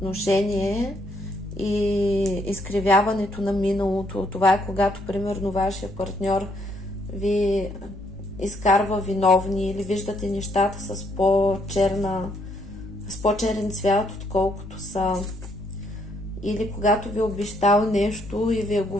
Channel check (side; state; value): both; normal; correlation 0.71